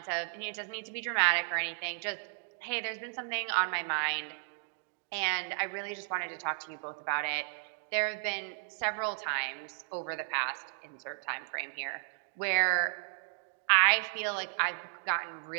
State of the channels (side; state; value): left; silent; digital silence